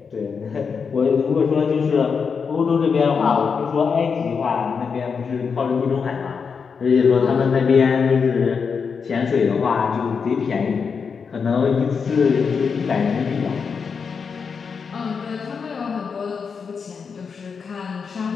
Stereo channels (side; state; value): right; quieter; 5.8 dB